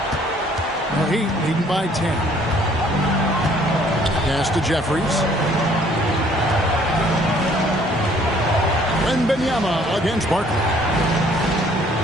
The Heat leading by 10. Pass to Jeffries. Wembanyama against Barkley.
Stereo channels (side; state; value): both; normal; correlation 0.60